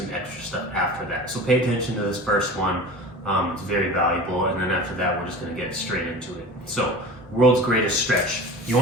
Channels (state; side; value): normal; both; correlation 0.36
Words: extra stuff after that. So pay attention to this first one. It's very valuable, and then after that, we're just gonna get straight into it. So, world's greatest stretch. You